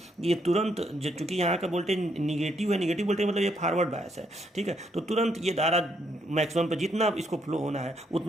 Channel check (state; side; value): normal; both; correlation 0.74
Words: ये तुरंत, चूँकि यहाँ का वोल्टेज निगेटिव है, निगेटिव वोल्टेज मतलब ये फॉरवर्ड बायस है। ठीक है, तो तुरंत ये धारा मैक्सिमम पर जितना इसको फ्लो होना है